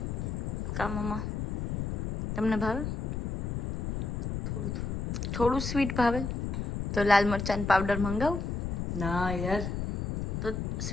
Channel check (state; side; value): noise; left; rumble, 2 dB below the sound